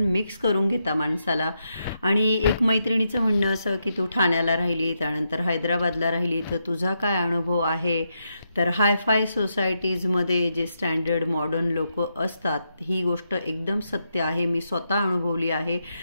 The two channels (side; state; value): both; inverted; correlation -0.83